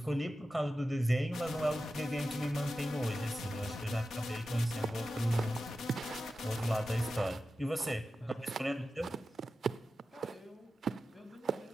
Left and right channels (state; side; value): normal; both; correlation 0.92